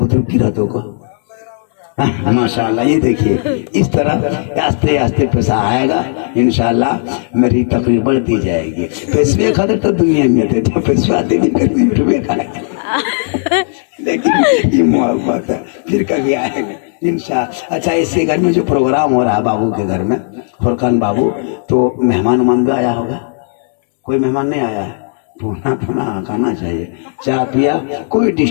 की रहते को माशाल्लाह। ये देखिए इस तरह आस्ते आस्ते पैसा आएगा इंशाल्लाह, मेरी तकरीर बढ़ती जाएगी। पैसे खाते तो दुनिया में थे, तो पैसे आते भी करते यूट्यूब खाए, लेकिन ये मोहब्बत है फिर कभी आएगा इंशाल्लाह। अच्छा, इसके घर में जो प्रोग्राम हो रहा है बाबू के घर में, फुरकान बाबू, तो मेहमान उमान भी आया होगा? कोई मेहमान नहीं आया है? पुना पुना खाना चाहिए, चाय पिया, कोई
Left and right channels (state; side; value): silent; right; 59 dB below the other